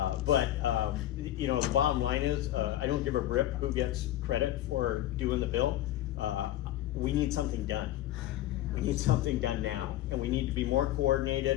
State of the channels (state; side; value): quieter; right; 13.8 dB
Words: the bottom line is, I don't give a rip who gets credit for doing the bill. We need something done. We need something done now, and we need to be more